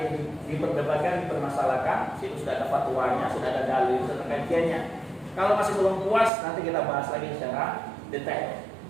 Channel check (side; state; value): left; drops out; at 6.3 s